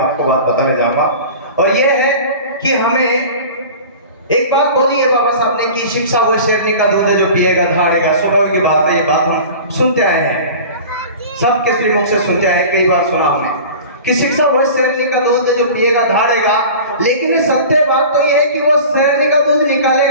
आपको बात बताने जाऊंगा, और ये है कि हमें एक बात बोली है बाबा साहब ने कि शिक्षा वो शेरनी का दूध है जो पिएगा धाड़ेगा। स्वभाव की बात है, ये बात हम सुनते आए हैं, सबके श्रीमुख से सुनते आए हैं, कई बार सुना हमने कि शिक्षा वो शेरनी का दूध है जो पिएगा धाड़ेगा। लेकिन सत्य बात तो ये है कि वो शेरनी का दूध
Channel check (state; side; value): inverted; both; correlation -0.38